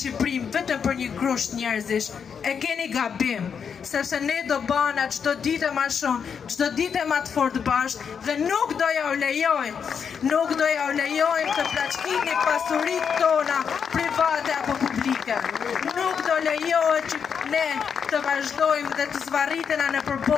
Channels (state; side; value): quieter; right; 6.9 dB